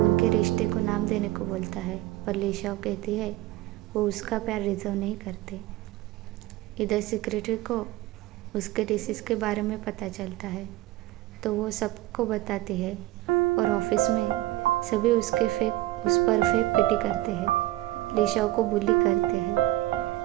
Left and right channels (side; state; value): left; quieter; 16.8 dB